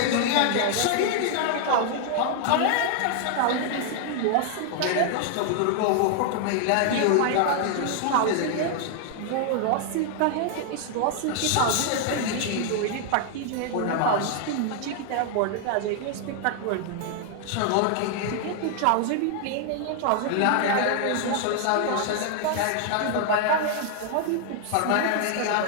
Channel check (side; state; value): both; different; correlation 0.00